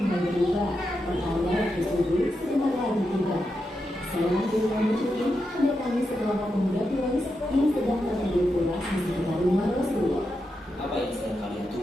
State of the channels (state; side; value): normal; both; correlation 0.86